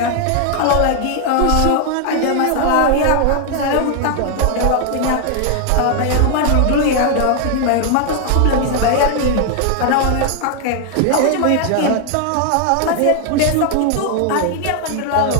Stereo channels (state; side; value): different; both; correlation 0.00